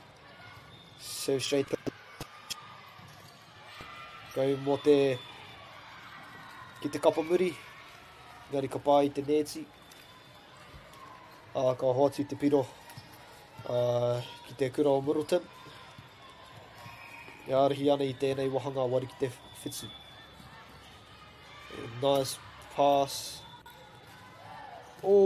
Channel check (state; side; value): identical; both; correlation 1.00